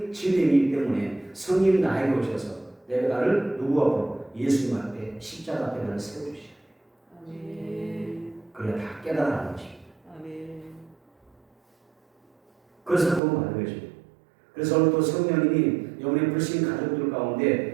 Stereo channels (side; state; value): left; drops out; at 13.2 s